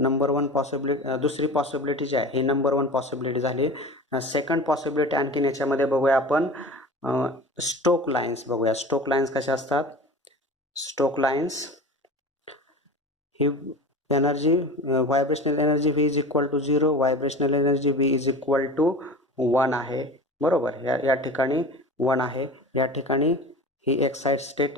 1 पॉसिबिलिटी, दुसरी पॉसिबिलिटी जी आहे ही नंबर 1 पॉसिबिलिटी झाली. सेकंड पॉसिबिलिटी आणखीन याच्यामध्ये बघूया आपण, स्टोक लाईन्स बघूया. स्टोक लाईन्स कशा असतात? स्टोक लाईन्स ही energy, vibrational energy v is equal to 0, vibrational energy v is equal to 1 आहे. बरोबर, या ठिकाणी 1 आहे. या ठिकाणी ही एक्साइट स्टेट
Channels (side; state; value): both; normal; correlation 0.35